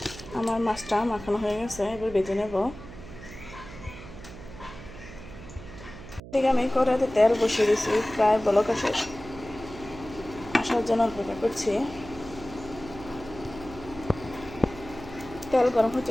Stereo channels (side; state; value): right; noise; hum, 15 dB below the sound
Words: আমার মাছটা মাখানো হয়ে গেছে, এবার ভেজে নেব। ঠিক আমি কড়াইতে তেল বসিয়ে দিয়েছি, প্রায় বলক আসার জন্য অপেক্ষা করছি। তেল গরম